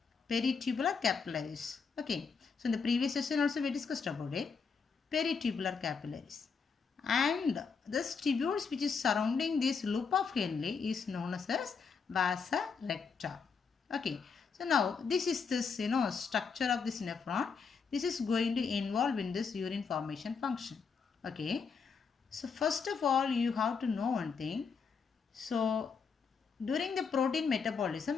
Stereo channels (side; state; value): right; quieter; 5.6 dB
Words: Peritubular capillaries. Okay, so in the previous session also we discussed about it. Peritubular capillaries. And this tubules which is surrounding this loop of Henle is known as vasa recta. Okay, so now this is this structure of this nephron. This is going to involve in this urine formation function. Okay, so first of all you have to know one thing. So during the protein